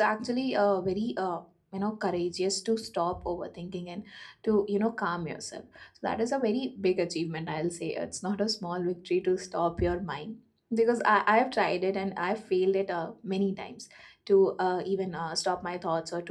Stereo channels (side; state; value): both; identical; correlation 1.00